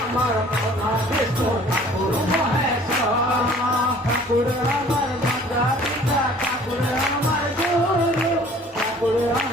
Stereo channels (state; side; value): normal; both; correlation 0.52